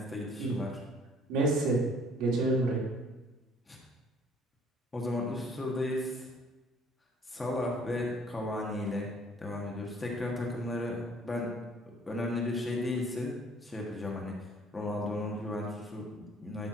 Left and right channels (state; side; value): normal; both; correlation 0.57